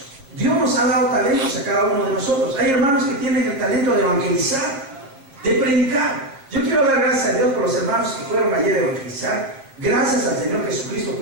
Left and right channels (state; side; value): late; left; 7.4 ms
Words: Dios nos ha dado talentos a cada uno de nosotros. Hay hermanos que tienen el talento de evangelizar, de predicar. Yo quiero dar gracias a Dios por los hermanos que fueron ayer a evangelizar. Gracias al Señor Jesucristo